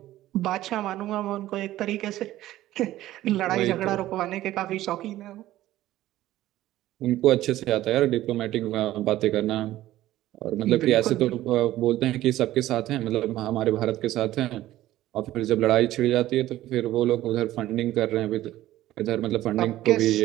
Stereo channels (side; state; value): left; quieter; 14.8 dB